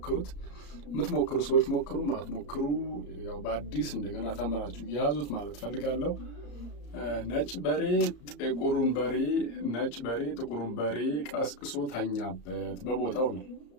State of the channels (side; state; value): right; late; 34 ms